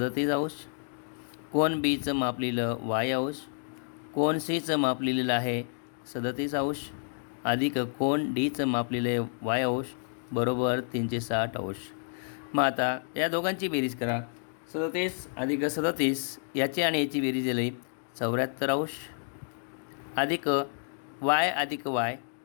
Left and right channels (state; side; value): silent; right; digital silence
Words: कोन बीचं माप लिहिलं y, कोन सीचं माप लिहिलेलं आहे 37 अधिक कोन डीचं माप लिहिलं y बरोबर 360. मग आता या दोघांची बेरीज करा. 37 अधिक 37 याची आणि याची बेरीज दिली 74 अधिक y अधिक y